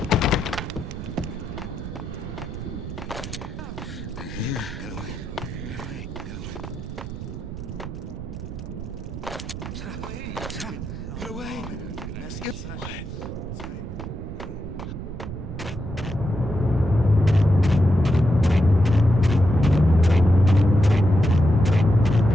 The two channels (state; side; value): noise; right; rumble, 9 dB below the sound